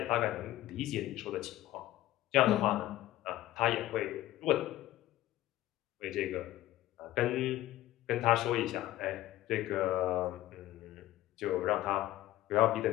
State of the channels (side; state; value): right; quieter; 14.9 dB